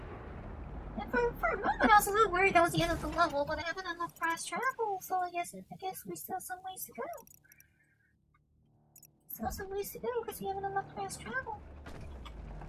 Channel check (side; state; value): both; identical; correlation 1.00